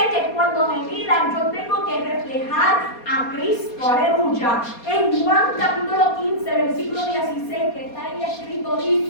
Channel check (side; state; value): right; late; 4.2 ms